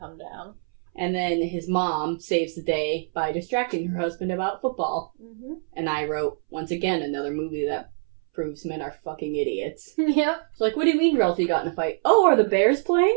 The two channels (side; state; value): left; silent; 62 dB below the other